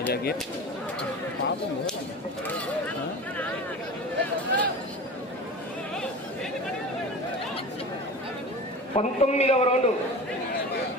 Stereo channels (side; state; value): both; normal; correlation 0.33